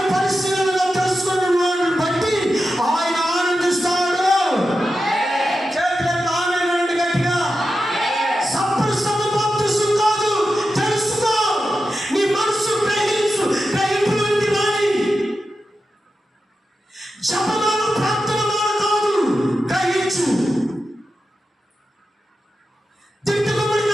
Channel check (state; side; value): normal; both; correlation 0.90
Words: పరిశీలనగా తెలుసుకున్న వాడిని బట్టి ఆయన ఆనందిస్తాడు. చేతులకు ఆనందండి గట్టిగా. సంపూర్ణ బాప్తిసం కాదు, తెలుసుకో. నీ మనసు గ్రహించు, గ్రహింపులోకి రాని. జపమాల ప్రార్థనమాల కాదు, గ్రహించు. తిట్టుకోబడిన